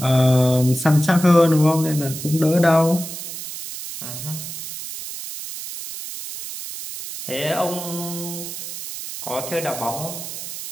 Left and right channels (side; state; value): right; noise; hiss, 9 dB below the sound